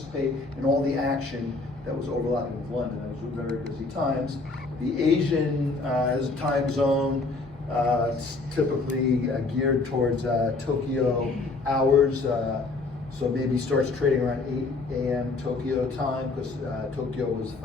in all the action that was overlapping with London. Those were very busy times. The Asian as a time zone, it's typically geared towards Tokyo hours. So maybe starts trading around 8 a.m. Tokyo time, because Tokyo was the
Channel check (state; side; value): quieter; right; 3.7 dB